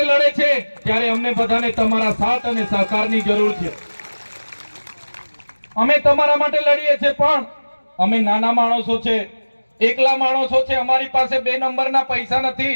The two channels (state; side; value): inverted; both; correlation -1.00